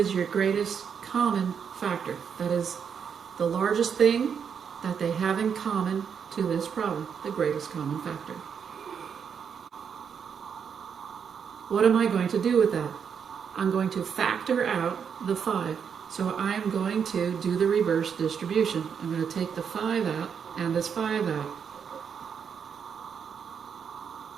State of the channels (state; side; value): quieter; left; 7.1 dB